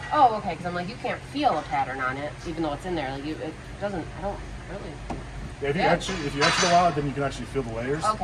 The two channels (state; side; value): identical; both; correlation 1.00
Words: Oh, okay. Because I'm like, you can't feel a pattern on it, even though it's in there. Like it doesn't. I don't really. Yeah, if you Yeah. etch it a lot, then you can actually feel the layers.